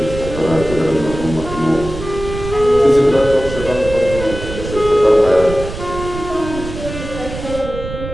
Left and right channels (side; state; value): right; noise; rumble, 9 dB below the sound